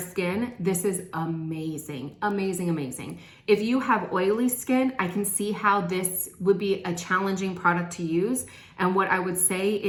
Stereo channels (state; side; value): identical; both; correlation 1.00